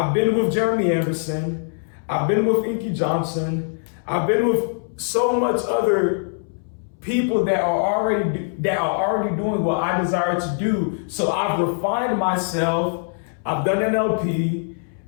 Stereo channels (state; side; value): silent; right; 64 dB below the other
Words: been with Jeremy Anderson, I've been with Inky Johnson, I've been with so much other people that are already doing what I desire to do. So I've refined myself. I've done NLP.